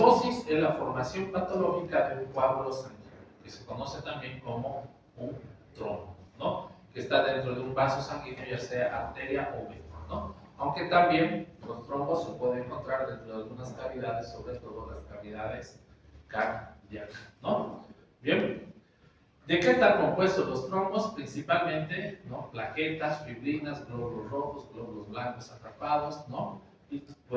es la formación patológica de un coágulo sanguíneo, que se conoce también como un trombo, ¿no? Que está dentro de un vaso sanguíneo, ya sea arteria o vena, ¿no? Aunque también los trombos se pueden encontrar dentro de algunas cavidades, sobre todo las cavidades cardíacas, ¿no? Bien. ¿De qué están compuestos los trombos? Principalmente, ¿no? Plaquetas, fibrinas, glóbulos rojos, glóbulos blancos atrapados, ¿no? Y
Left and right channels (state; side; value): identical; both; correlation 1.00